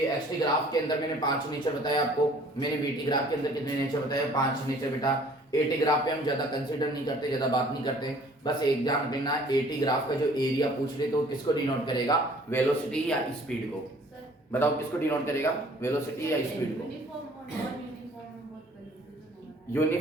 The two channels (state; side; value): normal; both; correlation 0.54